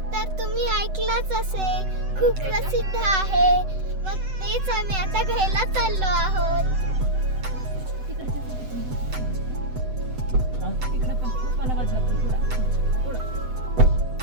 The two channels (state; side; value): late; left; 7.9 ms